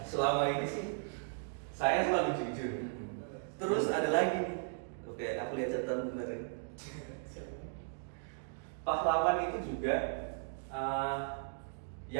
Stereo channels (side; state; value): left; silent; digital silence